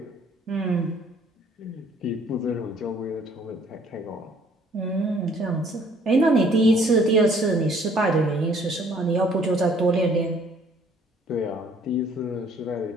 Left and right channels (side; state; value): both; normal; correlation 0.59